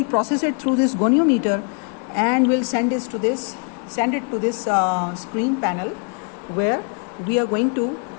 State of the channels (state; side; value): quieter; right; 39.0 dB